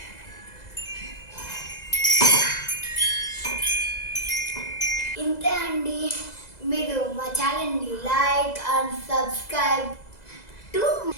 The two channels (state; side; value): late; right; 2.0 ms